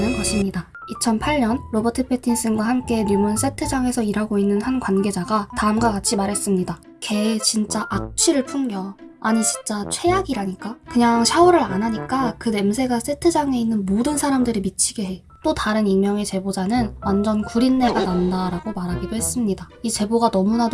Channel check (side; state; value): both; identical; correlation 1.00